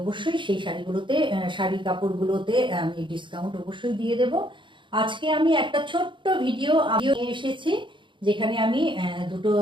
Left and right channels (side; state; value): left; late; 0.23 ms